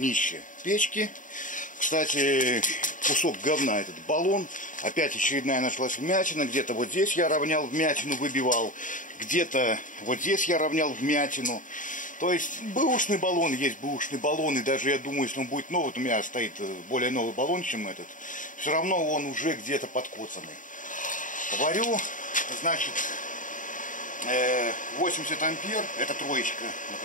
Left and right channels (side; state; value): right; late; 0.38 ms